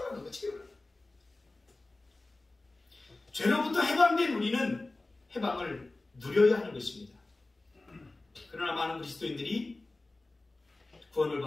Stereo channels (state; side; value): quieter; right; 3.1 dB